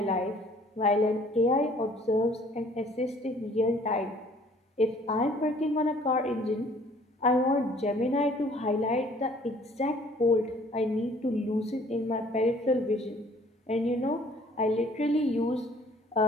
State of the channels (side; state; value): both; normal; correlation 0.56